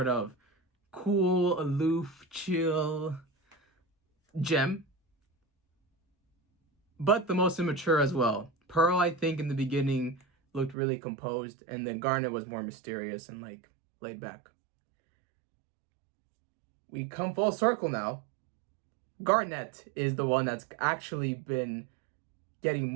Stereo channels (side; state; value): left; drops out; at 10.8 s